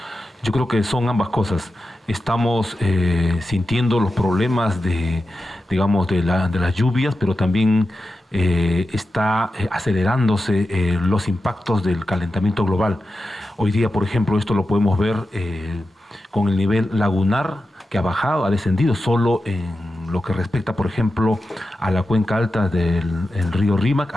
Yo creo que son ambas cosas. Estamos sintiendo los problemas digamos, de las lluvias, pero también está acelerándose los impactos del calentamiento global. Hoy día, por ejemplo, esto lo podemos ver con el nivel lagunar que ha bajado, ha descendido solo en lo que respecta, por ejemplo, a la cuenca alta del río Rímac,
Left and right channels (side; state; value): both; normal; correlation 0.91